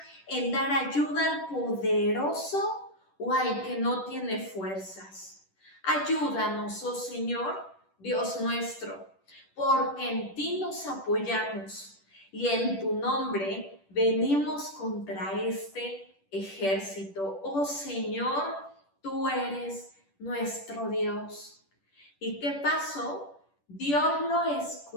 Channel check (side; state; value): right; late; 10 ms